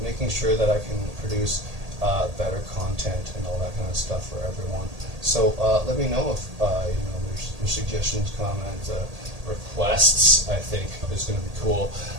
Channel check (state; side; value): late; left; 1.8 ms